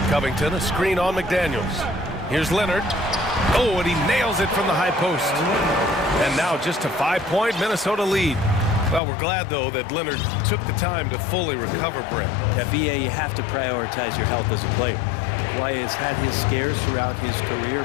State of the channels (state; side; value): drops out; right; at 9.0 s